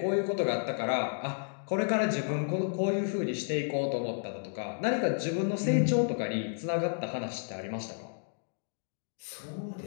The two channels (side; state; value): right; silent; digital silence